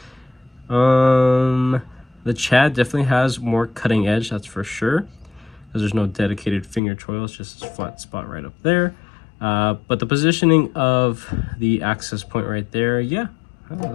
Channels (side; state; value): right; drops out; at 6.8 s